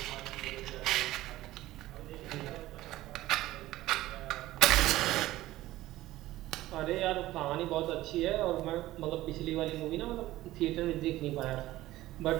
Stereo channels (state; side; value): quieter; left; 16.1 dB